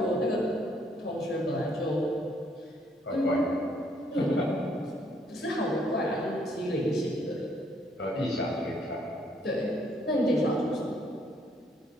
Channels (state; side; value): normal; both; correlation 0.68